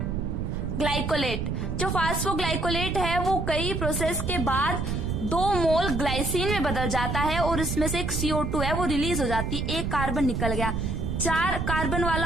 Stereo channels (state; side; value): noise; right; rumble, 2 dB below the sound